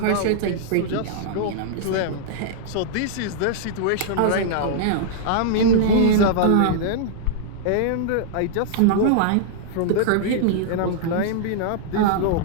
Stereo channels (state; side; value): different; both; correlation -0.01